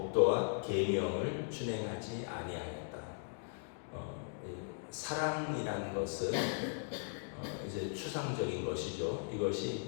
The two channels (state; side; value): silent; right; digital silence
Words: 계명을 준행하지 아니하였다. 사랑이라는 것은 이제 추상적인 것이죠.